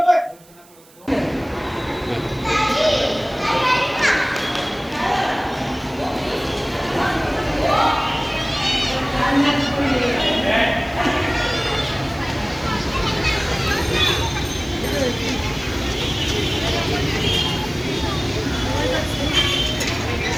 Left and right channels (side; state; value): right; noise; hiss, 26 dB below the sound